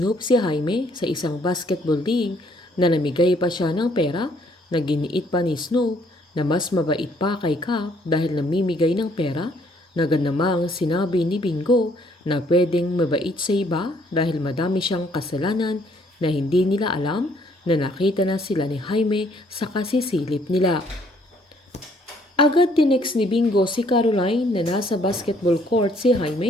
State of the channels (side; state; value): both; normal; correlation 0.65